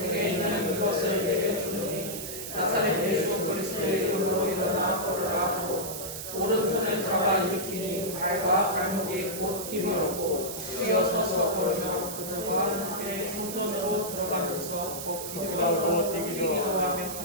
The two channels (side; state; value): right; noise; hiss, 7 dB below the sound